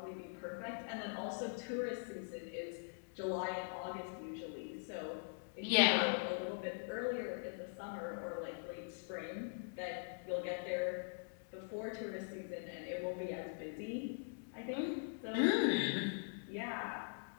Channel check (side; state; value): right; silent; digital silence